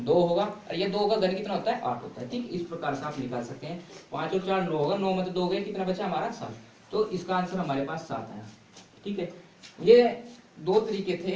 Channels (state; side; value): identical; both; correlation 1.00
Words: होगा, और ये 2 का घन कितना होता है, 8 होता है। ठीक, इस प्रकार से आप निकाल सकते हैं। 5 और 4 9 होगा, 9 में तो 2 गए, कितना बचा हमारा, 7। तो इसका आंसर हमारे पास 7 आया। ठीक है, ये 2 तरीके थे।